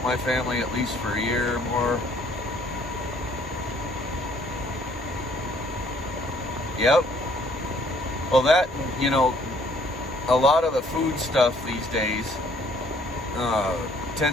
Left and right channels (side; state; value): both; normal; correlation 0.61